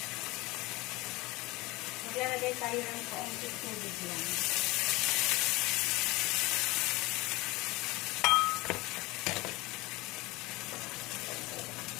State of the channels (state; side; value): quieter; right; 22.0 dB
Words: Maglalagay tayo ng kaunting tubig lang.